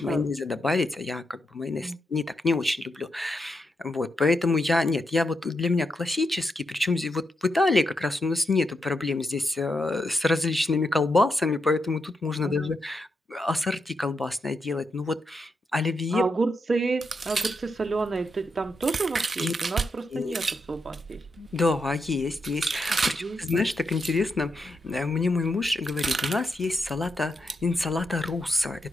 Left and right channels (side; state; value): both; normal; correlation 0.84